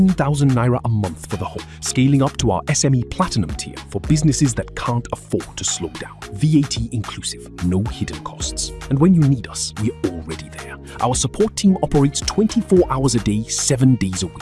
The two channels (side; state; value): both; identical; correlation 1.00